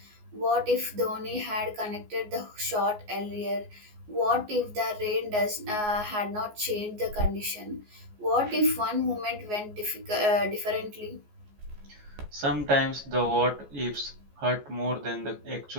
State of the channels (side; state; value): left; late; 14 ms